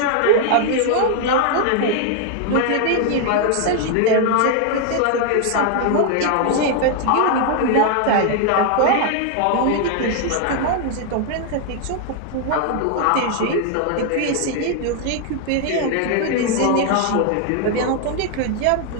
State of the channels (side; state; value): both; different; correlation 0.00